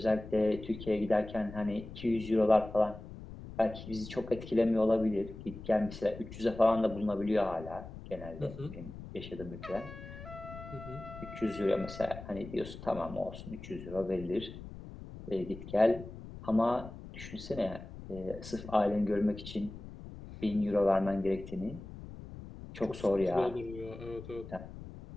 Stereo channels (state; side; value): noise; left; rumble, 13 dB below the sound